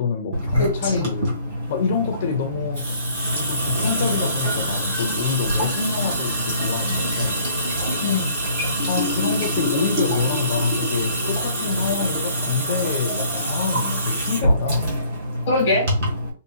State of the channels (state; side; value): inverted; both; correlation -0.58